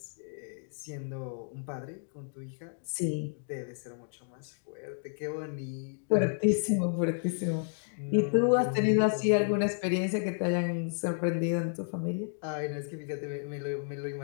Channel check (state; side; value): silent; right; digital silence